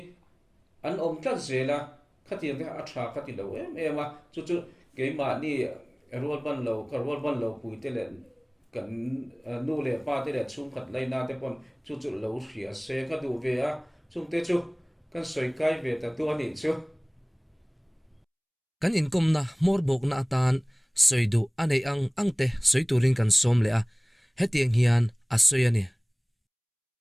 an om tlat zela khatiang te atha khati lo em a chu ke ma ni rol ban lo pui te le kan nu le pa te le chung khat lai na te pon chu lo hria se ka du ve a chung te chu kan soi kai ve ta tu ani chu kan income na mor bok na atan soidu anei ang te soiturin kan som le a hetiang hian a soyani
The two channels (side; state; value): both; identical; correlation 1.00